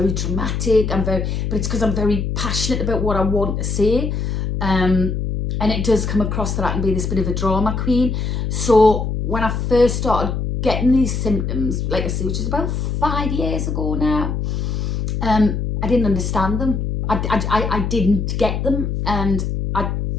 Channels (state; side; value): noise; left; hum, 2 dB below the sound